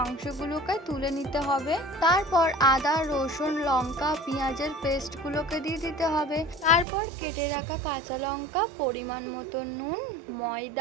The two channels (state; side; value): drops out; left; at 6.9 s